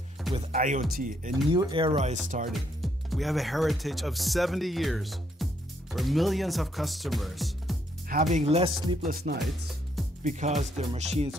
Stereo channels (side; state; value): both; normal; correlation 0.73